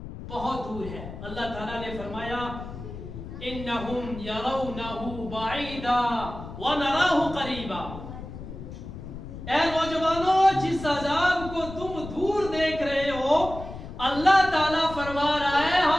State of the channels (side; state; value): left; noise; rumble, 11 dB below the sound